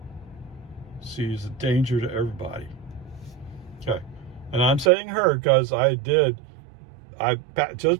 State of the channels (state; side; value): drops out; left; at 4.9 s